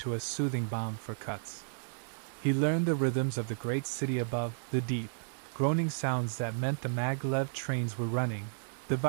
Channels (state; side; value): silent; left; 56 dB below the other